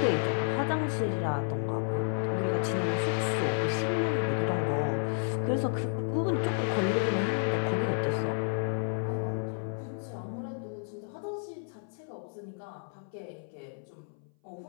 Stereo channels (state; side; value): silent; right; 57 dB below the other